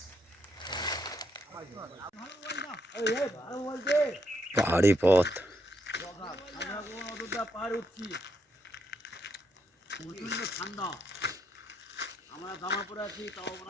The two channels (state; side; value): normal; both; correlation 0.76